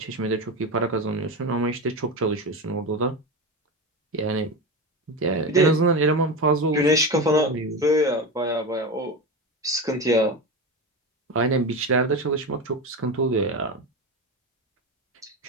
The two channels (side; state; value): both; normal; correlation 0.21